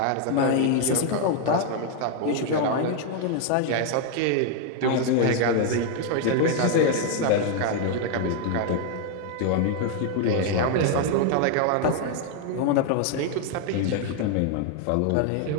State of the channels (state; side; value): different; both; correlation 0.00